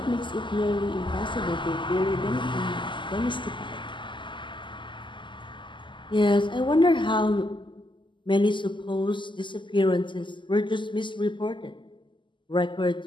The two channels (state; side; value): late; right; 0.24 ms